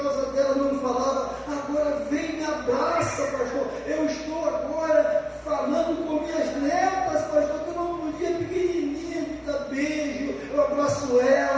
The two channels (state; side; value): identical; both; correlation 1.00